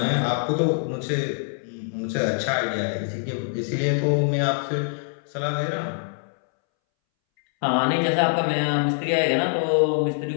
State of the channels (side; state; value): right; silent; 62 dB below the other